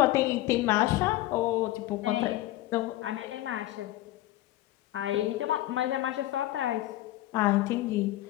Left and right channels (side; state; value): right; quieter; 16.0 dB